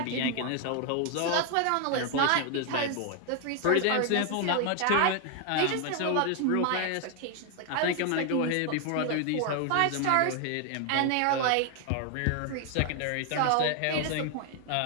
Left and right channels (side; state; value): both; different; correlation 0.00